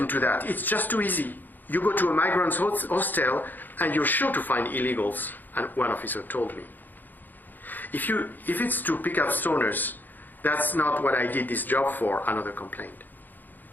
that. It's just too easy. You go to a migrants' hostel and you're sure to find illegals, and one officer told me. If it's to pick up stoners, that's not what I did this job for, another complained.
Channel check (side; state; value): right; late; 0.088 ms